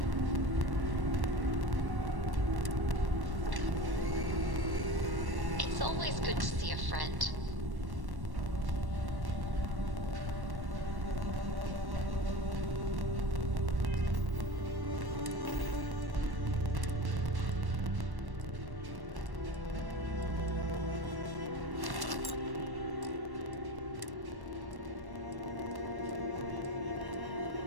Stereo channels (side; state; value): left; late; 1.1 ms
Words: It's always good to see a friend.